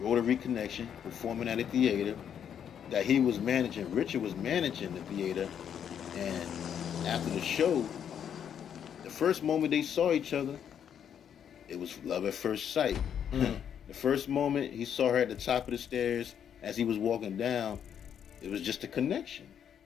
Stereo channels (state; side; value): quieter; right; 8.6 dB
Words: Connection, performing at a theater that he was managing. Richard was managing the theater, and after the show, the first moment they saw each other, it was love at first sight. The first moment he saw her at the top of the stairs as he was walking down, it was just a connection.